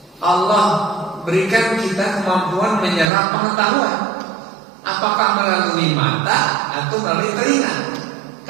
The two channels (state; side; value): drops out; left; at 3.1 s